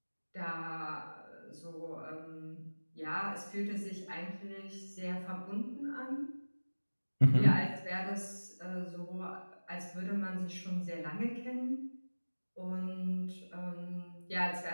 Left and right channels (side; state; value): both; inverted; correlation -1.00